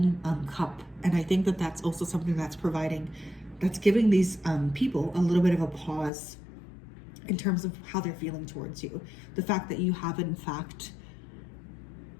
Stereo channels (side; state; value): right; drops out; at 6.1 s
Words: cup. And I think that that's also something that's giving these people a little bit of a pause in terms of how they're feeling towards you. The fact that you have in fact